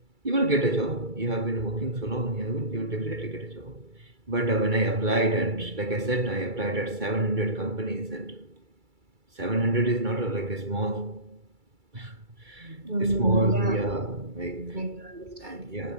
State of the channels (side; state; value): left; late; 2.3 ms